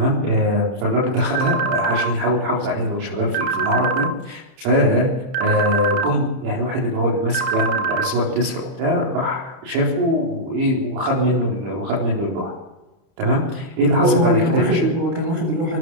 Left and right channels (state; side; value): late; left; 31 ms